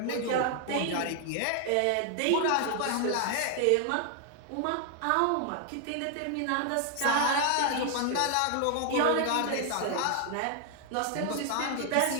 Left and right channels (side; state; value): both; different; correlation 0.00